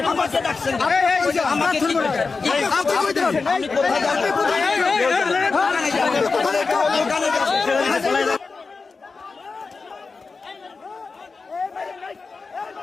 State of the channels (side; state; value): right; quieter; 4.4 dB